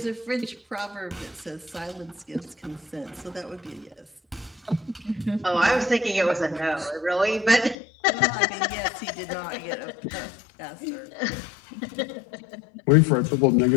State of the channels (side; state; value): right; drops out; at 7.8 s